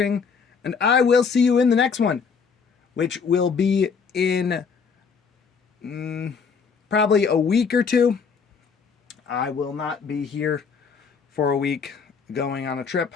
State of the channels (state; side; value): quieter; right; 5.8 dB